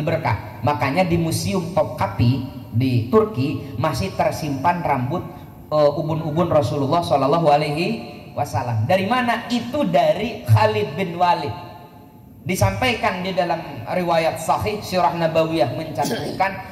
berkah. Makanya di Museum Topkapi di Turki masih tersimpan rambut ubun-ubun Rasulullah Shallallahu Alaihi Wasallam. Dari mana? Itu dari Khalid bin Walid. Disampaikan di dalam riwayat Sahih Sirah Nabawiyah mencantumkan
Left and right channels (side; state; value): both; identical; correlation 1.00